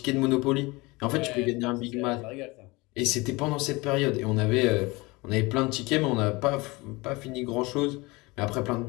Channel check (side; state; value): right; quieter; 23.9 dB